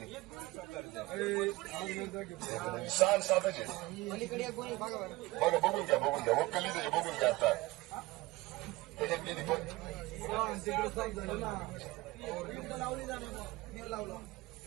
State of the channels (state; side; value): quieter; left; 20.3 dB